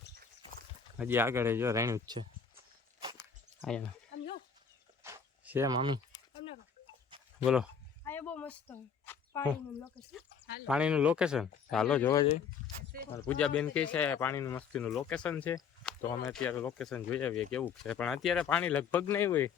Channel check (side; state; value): right; quieter; 6.7 dB